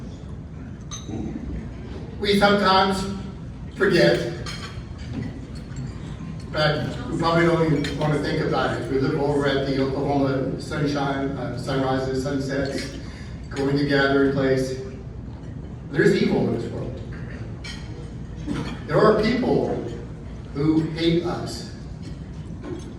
We sometimes forget, but we probably don't even want to think about it. We look over at the Oklahoma sunshine, sunrises, sunsets, going to gathering place. There's evil in this world. There are people who hate us.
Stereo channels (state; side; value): identical; both; correlation 1.00